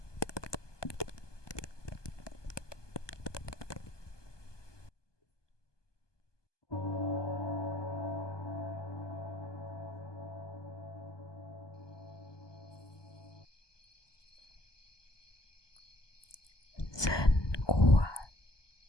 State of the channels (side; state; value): right; late; 1.2 ms